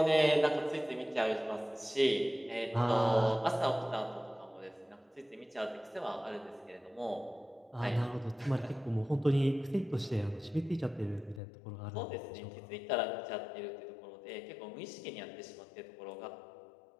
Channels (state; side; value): drops out; right; at 11.4 s